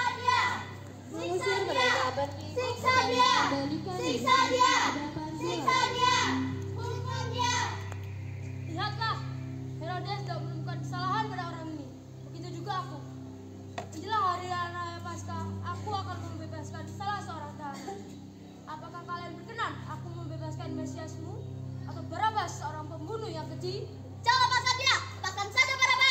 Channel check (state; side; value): identical; both; correlation 1.00